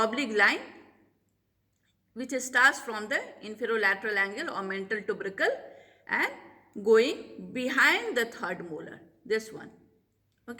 line, which starts from the inferolateral angle or mental tubercle and going behind the third molar, this one.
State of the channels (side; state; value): both; identical; correlation 1.00